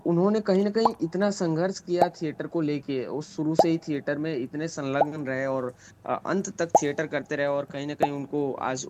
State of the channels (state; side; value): identical; both; correlation 1.00